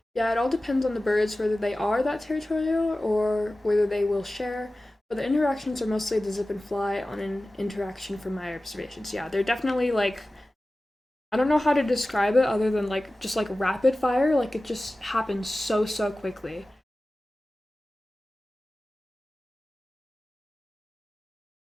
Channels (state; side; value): normal; both; correlation 0.96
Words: Yeah, it all depends on the birds, whether they are that territorial or whether they will share. But the interactions are mostly the zip and fly on an interaction from my observations. Yeah, they're definitely like, I don't know how to describe it other than like just like rapid fire. Like it just happens so quickly.